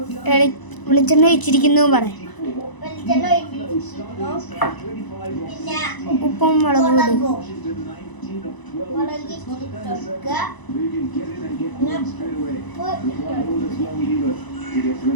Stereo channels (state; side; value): late; right; 1.0 ms